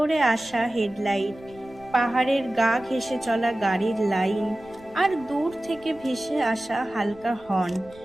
আসা হেডলাইট, পাহাড়ের গা ঘেঁষে চলা গাড়ির লাইন আর দূর থেকে ভেসে আসা হালকা হর্ন,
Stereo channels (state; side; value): noise; right; rumble, 24 dB below the sound